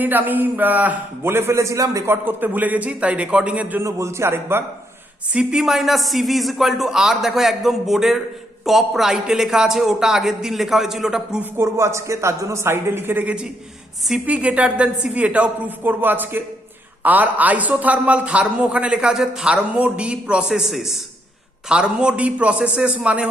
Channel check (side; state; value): both; normal; correlation 0.75